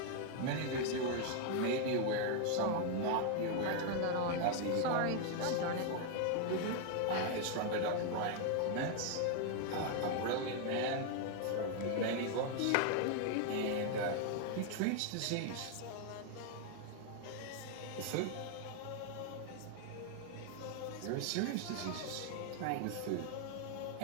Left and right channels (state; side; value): different; both; correlation 0.00